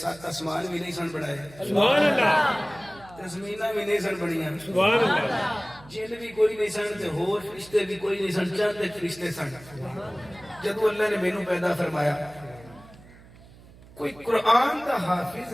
آسمان بھی نہیں سن بنائے سبحان اللہ زمیناں بھی نہیں سن بنیاں سبحان اللہ جن بھی کوئی نہیں سن تے ہور فرشتے بھی کوئی نہیں سن چند فرشتے سن جدوں اللہ نے مینوں پیدا فرمایا کوئی قرآن دا حافظ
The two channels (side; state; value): right; noise; hum, 22 dB below the sound